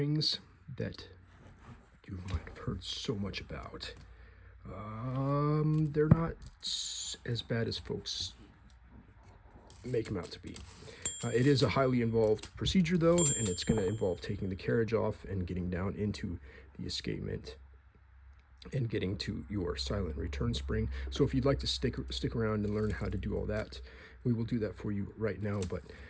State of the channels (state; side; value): identical; both; correlation 1.00